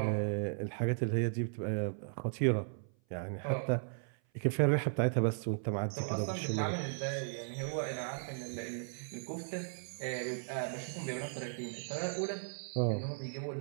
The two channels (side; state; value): left; silent; 54 dB below the other